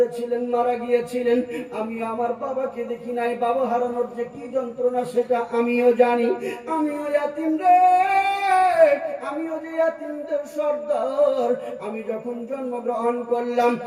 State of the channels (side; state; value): both; identical; correlation 1.00